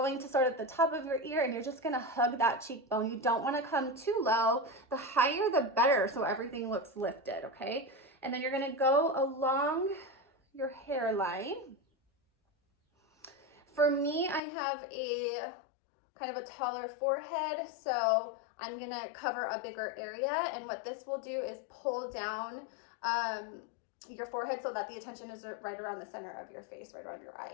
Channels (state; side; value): drops out; right; at 14.4 s